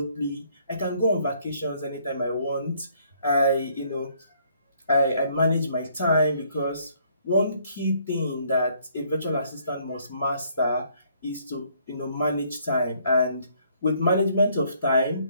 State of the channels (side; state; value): both; inverted; correlation -0.65